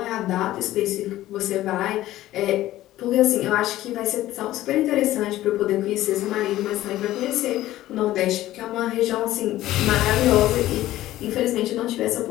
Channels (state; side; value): quieter; right; 15.0 dB